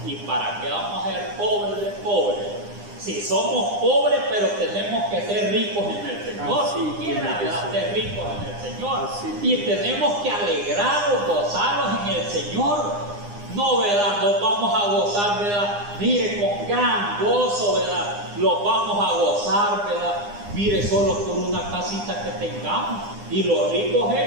¿Y para qué vamos a ser pobres de pobres? Si somos pobres, pero tenemos que ser ricos en el Señor. Si quiera, ¿verdad? Ser ricos en el Señor. Y tenemos que alegrarnos, gozarnos en el Señor. No, ¿verdad? Nos vamos a gozar, ¿verdad? Mire, con gran gozo, ¿verdad? Los vamos a gozar, ¿verdad? Mire, solo por una casita que tengamos. Y los ricos,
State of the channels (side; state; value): left; late; 9.8 ms